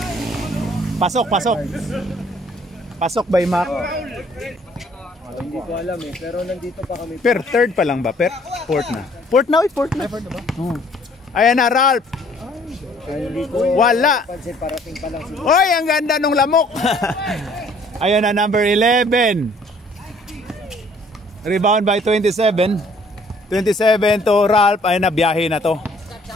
Pasok. Pasok by Mac. Hindi ko alam eh, pero nandito pa kami. Third pa lang ba? Fourth na. Fourth na. Oh. Ayan na, Ralph. Hindi ko Wala. pansin, parating pa lang siguro. Hoy, ang ganda nung lamok. Ayan na, number 11. Rebound by 27. 27 to Ralph. Ayan na, biyahe na to.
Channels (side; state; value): both; normal; correlation 0.59